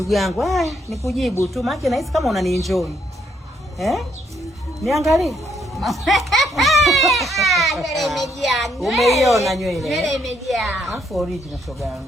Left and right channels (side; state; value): both; normal; correlation 0.72